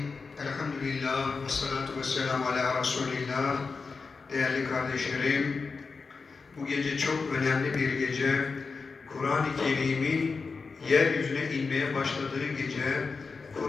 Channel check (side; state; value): right; quieter; 4.6 dB